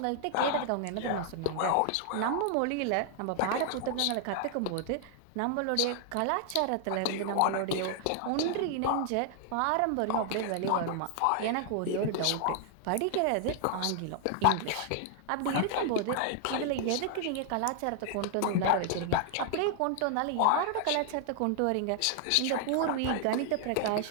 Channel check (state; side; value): different; both; correlation 0.00